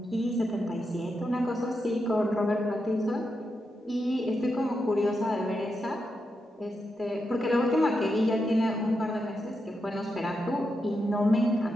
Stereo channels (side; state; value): both; normal; correlation 0.85